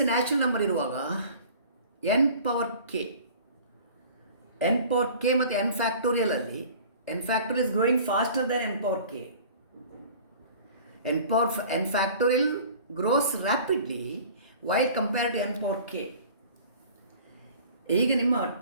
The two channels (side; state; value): both; inverted; correlation -0.46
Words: a natural number ಇರುವಾಗ n power k ಮತ್ತು n factorial ಅಲ್ಲಿ n factorial is growing faster than n power k. n factorial grows rapidly while compared to n power k. ಈಗ ನಿಮ್ಮ